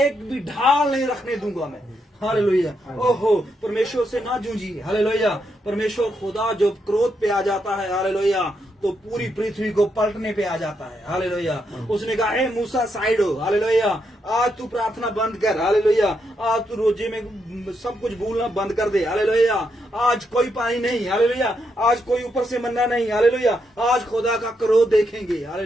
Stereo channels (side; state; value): both; normal; correlation 0.80